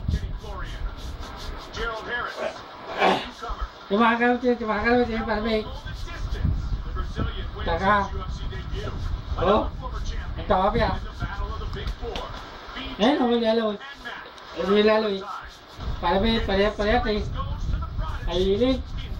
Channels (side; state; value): both; identical; correlation 1.00